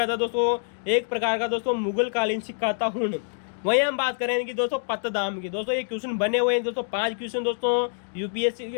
था दोस्तों? एक प्रकार का दोस्तों मुगल कालीन सिक्का था हूण। वहीं हम बात करेंगे कि दोस्तों पत्तदाम की। दोस्तों ये क्वेश्चन बने हुए हैं दोस्तों 5 क्वेश्चन दोस्तों यूपीएससी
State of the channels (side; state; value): right; silent; digital silence